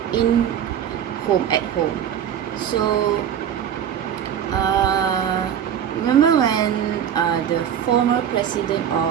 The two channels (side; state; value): left; quieter; 9.3 dB